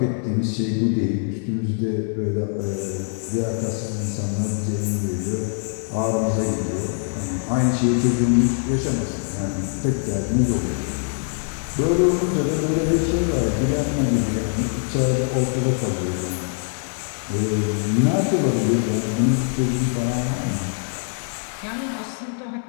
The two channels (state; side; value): silent; right; 63 dB below the other